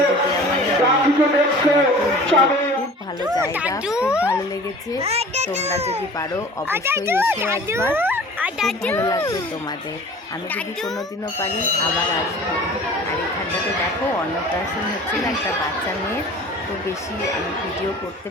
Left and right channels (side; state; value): both; normal; correlation 0.44